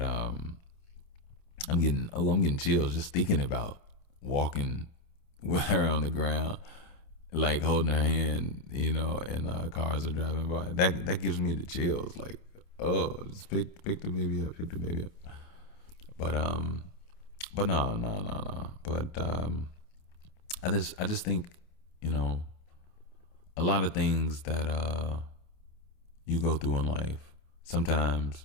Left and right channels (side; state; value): right; late; 28 ms